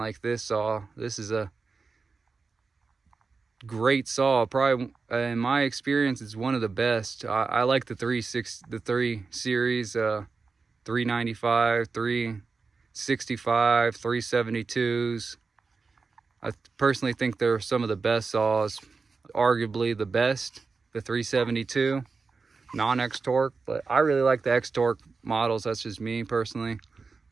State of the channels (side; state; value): left; quieter; 4.5 dB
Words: this saw. This is a great saw. Probably, in my experience, it's one of the best. I like the 3 series, 395, 365, 372s. I personally think they're some of the best saws, arguably the best, the 372 non-X torque, but I really like the X torque models. That's just me personally.